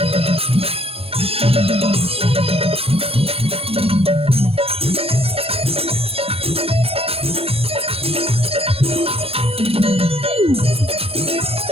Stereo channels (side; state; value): left; late; 0.28 ms